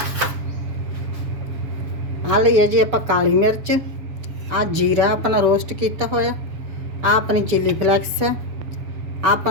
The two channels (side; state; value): left; late; 7.2 ms